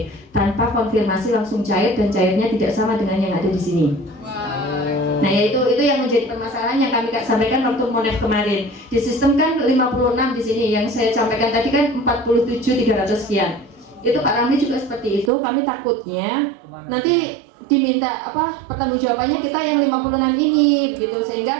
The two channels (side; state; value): left; drops out; at 15.3 s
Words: Tanpa konfirmasi langsung cair, dan cairnya tidak sama dengan yang ada di sini. Nah, ya itu yang menjadi permasalahan yang kami sampaikan waktu MONEF kemarin. Di sistem kan 56 di sini, yang saya sampaikan tadi kan 47.300 sekian. Itu Pak Ramli juga seperti itu. Kami takutnya nanti diminta pertanggungjawabannya kita yang 56 ini begitu,